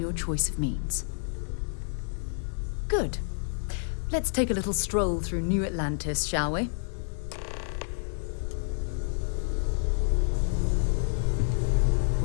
choice of means. Good. Let's take a little stroll through New Atlantis, shall we?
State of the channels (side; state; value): right; silent; 58 dB below the other